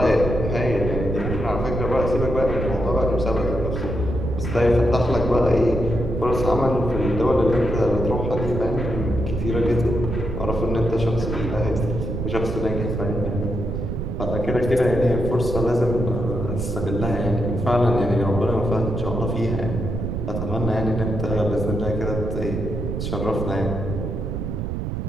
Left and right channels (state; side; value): noise; right; rumble, 3 dB below the sound